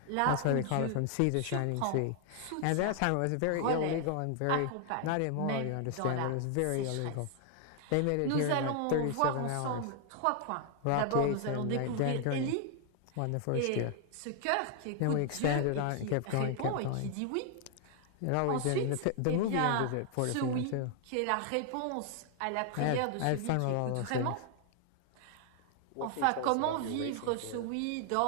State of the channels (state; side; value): different; both; correlation 0.00